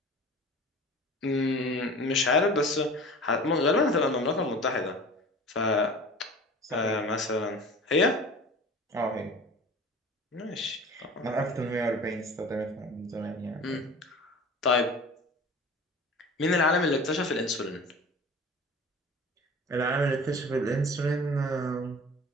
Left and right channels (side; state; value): both; normal; correlation 0.40